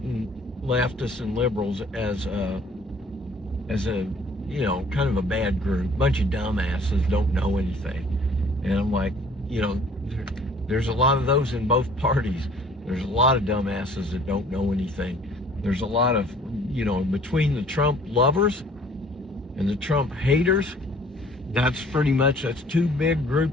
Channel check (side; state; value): both; normal; correlation 0.54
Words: leftists and liberals as a kind of a bad group, bunch of dumbasses, don't know anything. And I'm like, there's a lot of those in both parties. There's a lot of dumbasses that don't know anything. There's a lot of, between the Trump lovers and the Trump haters, that's two big